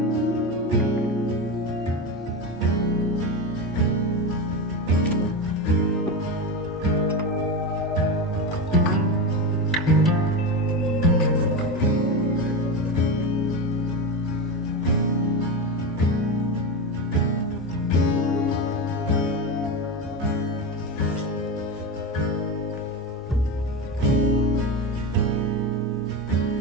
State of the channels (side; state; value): both; normal; correlation 0.18